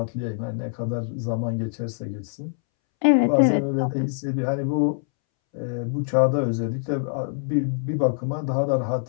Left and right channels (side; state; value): right; silent; 62 dB below the other